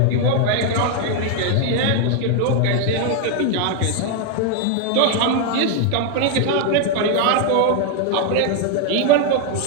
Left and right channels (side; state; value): both; different; correlation 0.00